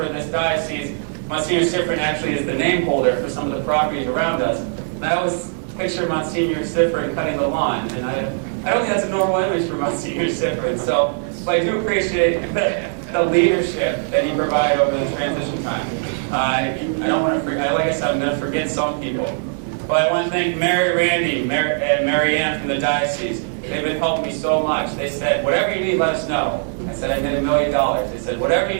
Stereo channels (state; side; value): silent; left; digital silence